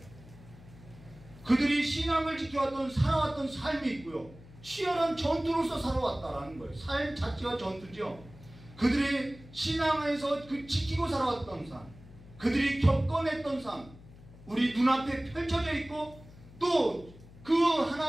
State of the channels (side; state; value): left; noise; hum, 20 dB below the sound